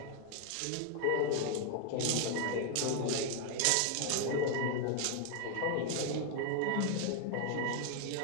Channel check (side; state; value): both; different; correlation 0.00